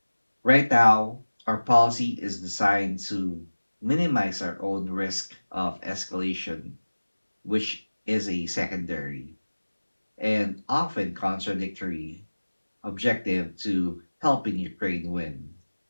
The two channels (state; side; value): inverted; both; correlation -1.00